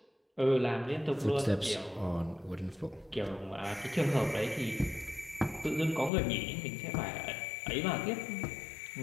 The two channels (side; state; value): right; drops out; at 6.1 s